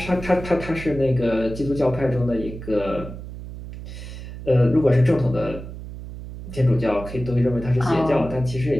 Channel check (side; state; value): right; noise; hum, 11 dB below the sound